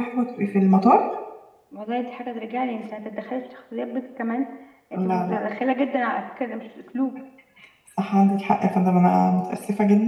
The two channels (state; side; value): identical; both; correlation 1.00